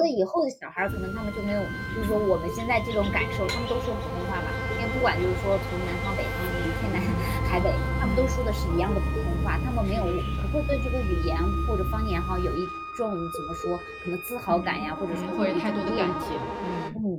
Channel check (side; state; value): both; identical; correlation 1.00